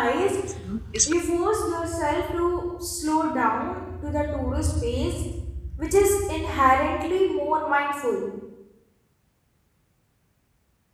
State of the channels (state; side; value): identical; both; correlation 1.00